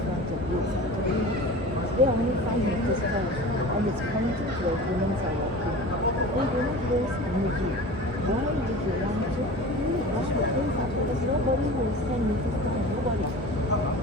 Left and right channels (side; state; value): both; normal; correlation 0.36